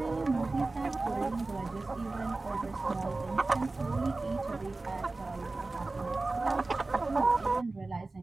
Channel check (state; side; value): quieter; left; 3.3 dB